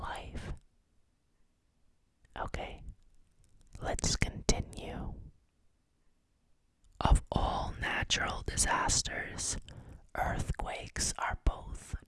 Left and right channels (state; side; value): identical; both; correlation 1.00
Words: Okay, let's continue. Of all natural disasters, earthquakes are both